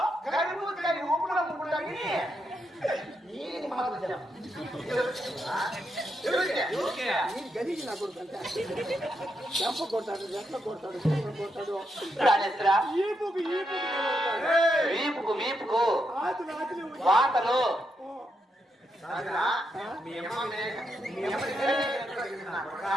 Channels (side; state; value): both; normal; correlation 0.82